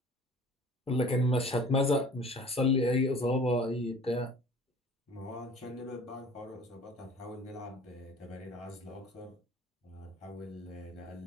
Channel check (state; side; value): normal; both; correlation 0.47